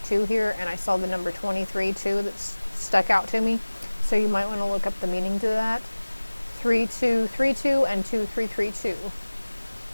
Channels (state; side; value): inverted; both; correlation -1.00